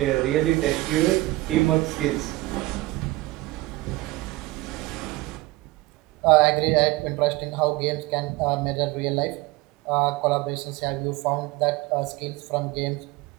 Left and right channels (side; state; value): left; quieter; 20.0 dB